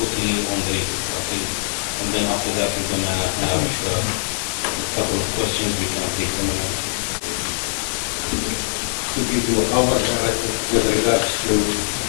on the latest update. And then after that, we're going to have maybe a couple of questions. We can take them and answer. To give you our narrative with regards to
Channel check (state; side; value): silent; right; digital silence